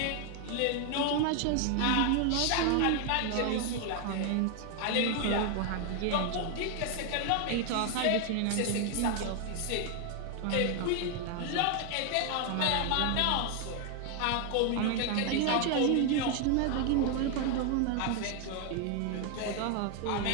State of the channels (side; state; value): both; different; correlation 0.00